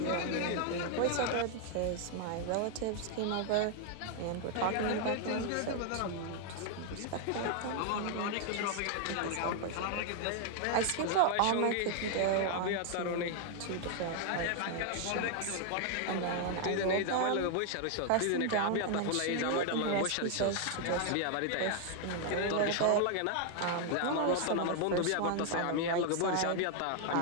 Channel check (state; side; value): different; both; correlation 0.00